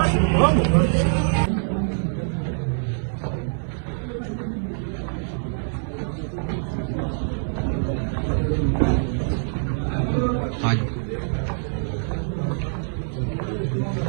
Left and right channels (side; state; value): left; silent; digital silence